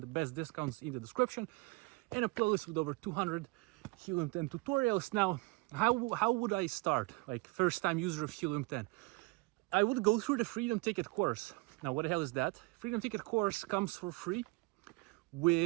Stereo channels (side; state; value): left; quieter; 25.2 dB